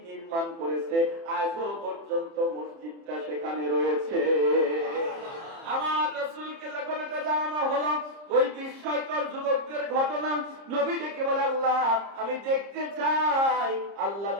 নির্মাণ করেছে। আজও পর্যন্ত মসজিদটা সেখানে রয়েছে। আমার রাসূলকে যখন এটা জানানো হলো, ওই বিস্ময়কর যুবকদের ঘটনা, নবী ডেকে বলে, আল্লাহ আমি দেখতে চাই। আল্লাহ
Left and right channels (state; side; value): late; left; 30 ms